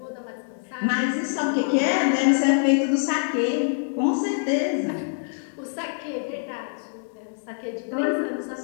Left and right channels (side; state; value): right; silent; 62 dB below the other